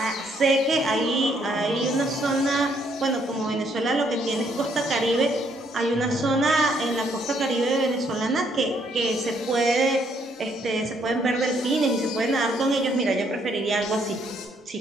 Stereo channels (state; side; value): normal; both; correlation 0.70